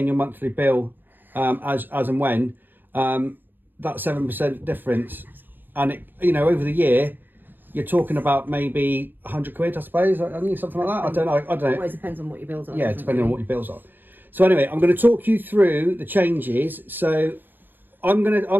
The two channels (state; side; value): late; left; 0.092 ms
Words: your monthly bill as and when. That 7% difference, and it, you know, over the year, you're talking about maybe 100 quid, I suppose. I think something like that. I don't know. It always depends on what your bills are. Yeah, depending on what your bills are. So anyway, I'm going to talk you through the changes. So I'm going